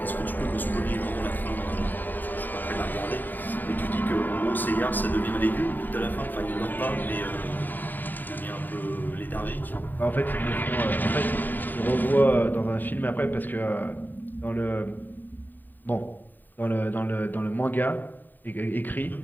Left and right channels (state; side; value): late; right; 0.089 ms